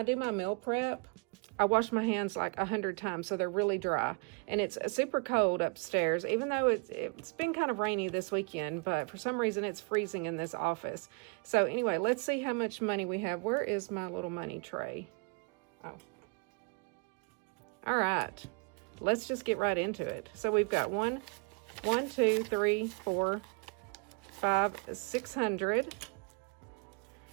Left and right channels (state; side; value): quieter; left; 33.7 dB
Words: do my meal prep, I wash my hands like 100 times so they're really dry. And it's super cold upstairs, even though it's been kind of rainy this weekend, but for some reason it's freezing in this office. So anyway, let's see how much money we have. Where is my little money tray? Oh. All right, let's just get right into it. So we've got 1, 2, 3, 4, 5, 600.